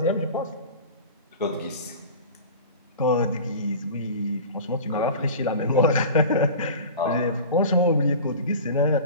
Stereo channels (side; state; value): both; inverted; correlation -0.36